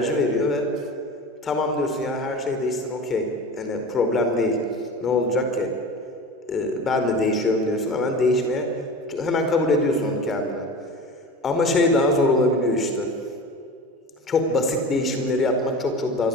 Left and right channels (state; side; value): normal; both; correlation 0.33